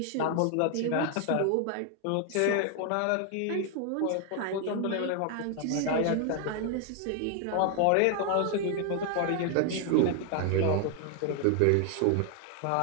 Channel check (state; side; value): different; both; correlation 0.00